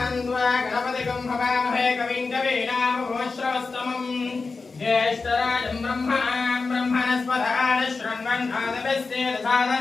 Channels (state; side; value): quieter; right; 4.2 dB